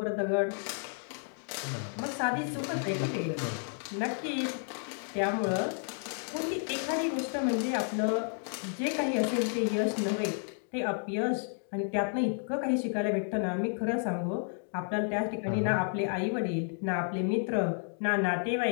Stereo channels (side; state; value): right; silent; 56 dB below the other